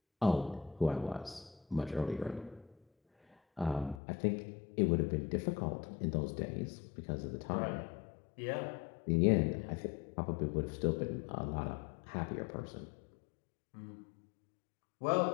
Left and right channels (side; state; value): right; drops out; at 4.0 s